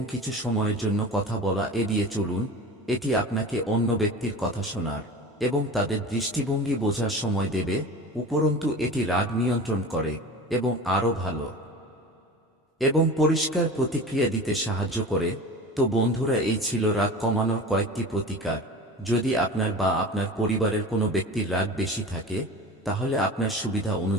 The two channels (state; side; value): normal; both; correlation 0.34